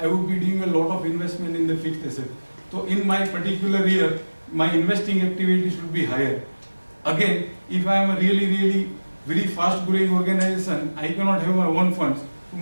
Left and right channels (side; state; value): both; inverted; correlation -1.00